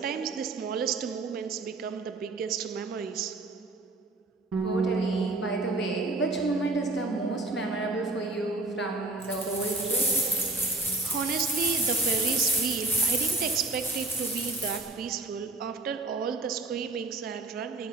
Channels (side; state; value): left; quieter; 3.2 dB